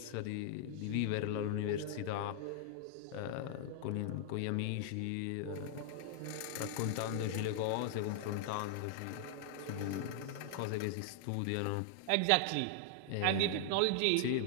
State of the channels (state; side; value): different; both; correlation -0.01